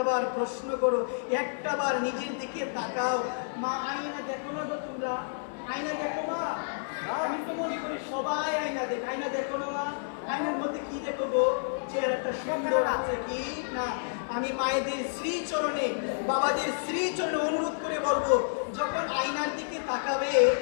প্রশ্ন করো, একটাবার নিজের দিকে তাকাও। মা আয়না দেখো না তো তোমরা? আয়না দেখো মা? আমি তো মনে করি সবাই আয়না দেখে। আয়না দেখো না মা? আয়নার মধ্যে কি দেখো গো? চেহারাটা সুন্দর আছে কি না? আমি মায়েদের শ্রীচরণে, বাবাদের শ্রীচরণে অনুরোধ করে বলবো, যখন আয়নার দিকে তাকাবে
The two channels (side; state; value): right; silent; 58 dB below the other